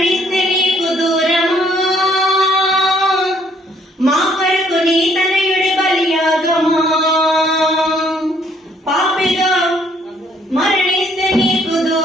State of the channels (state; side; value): normal; both; correlation 0.65